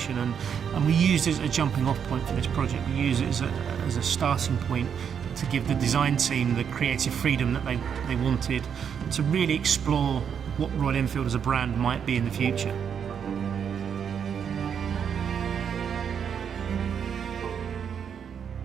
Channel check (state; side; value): quieter; left; 7.6 dB